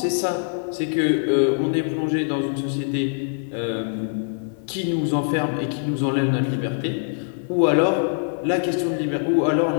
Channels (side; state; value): right; silent; 63 dB below the other